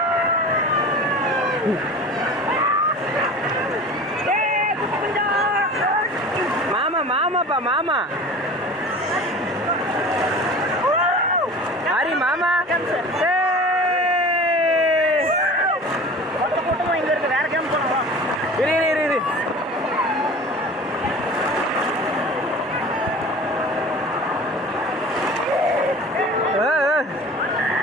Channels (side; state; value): both; normal; correlation 0.39